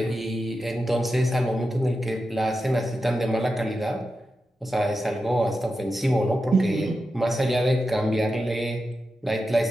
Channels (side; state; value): both; normal; correlation 0.90